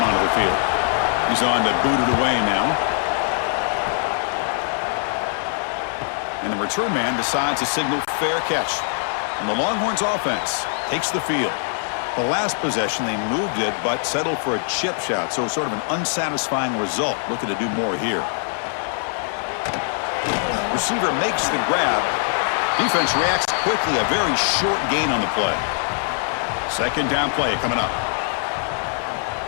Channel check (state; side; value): silent; right; digital silence